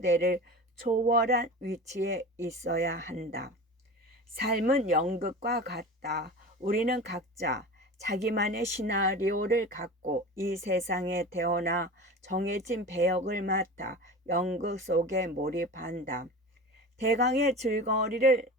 초월한 위치에 있어야 한다. 삶은 연극과 같다. 우리는 각자 자기만의 시나리오를 갖고 이 세상에 태어나 정해진 배역을 맡아 연극 속에 몰입한다. 대강의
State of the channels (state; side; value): normal; both; correlation 0.33